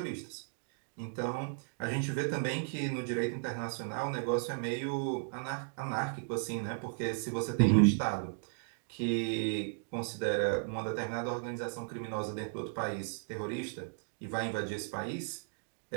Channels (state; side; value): silent; left; digital silence